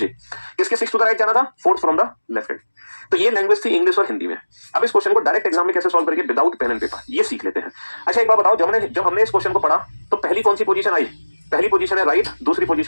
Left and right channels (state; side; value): inverted; both; correlation -1.00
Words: किसके 6 टू द राइट जाना था, 4th from the left hand. तो ये लैंग्वेज थी इंग्लिश और हिंदी में। अब इस क्वेश्चन को डायरेक्ट एग्जाम में कैसे सॉल्व करेंगे विदाउट पेन एंड पेपर, ये सीख लेते हैं। अच्छा एक बात बताओ, जब हमने इस क्वेश्चन को पढ़ा तो पहली कौन सी पोजीशन आई, पहली पोजीशन है राइट, दूसरी